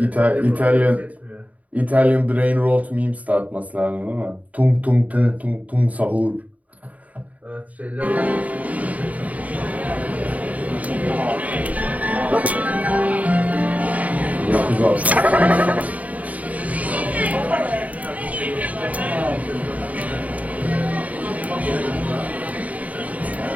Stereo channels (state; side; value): late; left; 0.071 ms